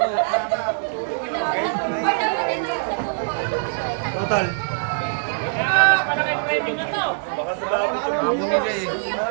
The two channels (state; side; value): silent; left; digital silence